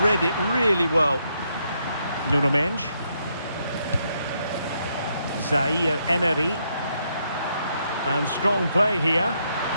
Read it really well. Nuno Mendes. Zaire Emery. And strong play here.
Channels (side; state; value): both; inverted; correlation -0.76